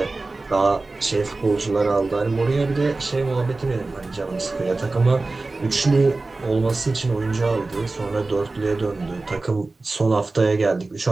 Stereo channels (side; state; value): left; quieter; 3.4 dB